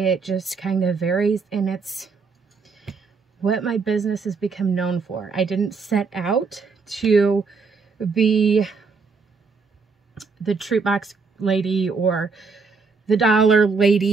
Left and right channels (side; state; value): left; quieter; 4.8 dB